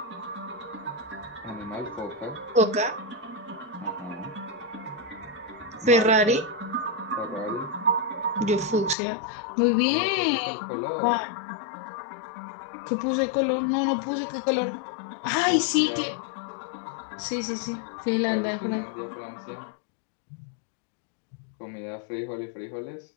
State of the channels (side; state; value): right; drops out; at 9.0 s